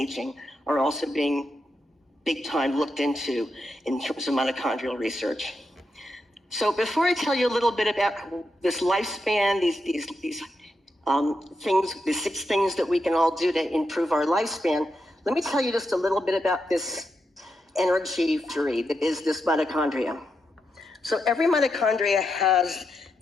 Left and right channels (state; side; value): normal; both; correlation 0.85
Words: are also being big time looked into in terms of mitochondrial research. So before I tell you a little bit about this lifespan, these things, the 6 things that we can all do to improve our lifespan, let me tell you just a little bit about this energy factory that is this mitochondria. So every mitochondria has